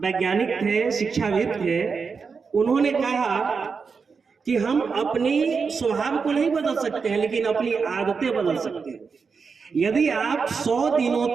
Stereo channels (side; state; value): left; quieter; 5.3 dB